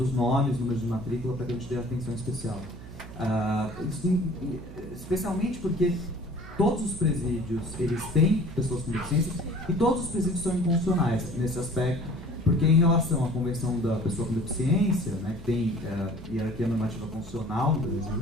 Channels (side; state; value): right; noise; hum, 15 dB below the sound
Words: nomes, números de matrícula, para que a gente dê atenção especial. Especialmente porque todos os presídios eles têm pessoas com deficiência e todos os presídios são inconstitucionais nesse aspecto, porque em relação à Convenção da Pessoa com Deficiência, né, que tem hierarquia normativa constitucional no Brasil,